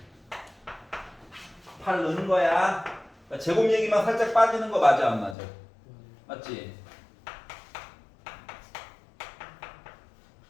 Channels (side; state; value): right; drops out; at 5.4 s